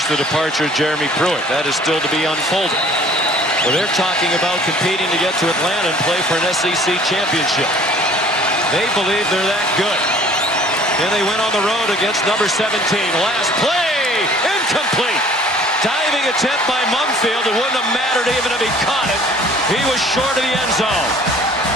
the departure of Jeremy Pruitt. That is still to be unfolded. Well, they're talking about competing to get to Atlanta and play for an SEC championship. They believe they're that good. And they went on the road against number 17. Last play, incomplete. Diving attempt by Mumfield. It wouldn't have mattered even if he caught it. He was short of the end zone.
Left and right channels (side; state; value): both; normal; correlation 0.53